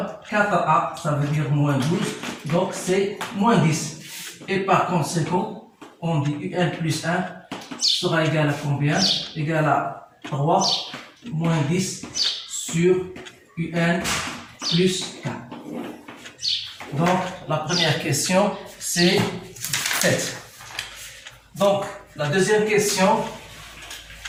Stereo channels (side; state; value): both; identical; correlation 1.00